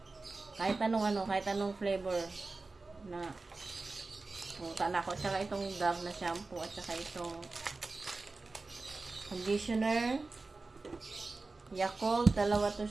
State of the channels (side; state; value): left; quieter; 3.6 dB